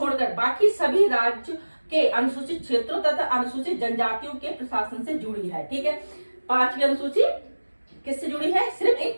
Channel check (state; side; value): inverted; both; correlation -1.00